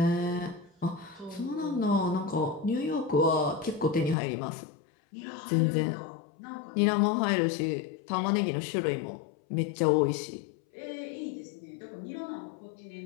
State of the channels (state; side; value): drops out; right; at 4.2 s